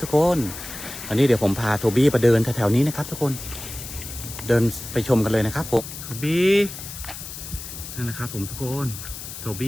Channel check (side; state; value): left; noise; hiss, 11 dB below the sound